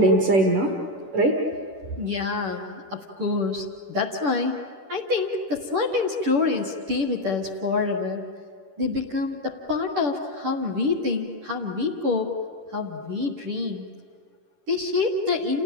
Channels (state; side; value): late; left; 10 ms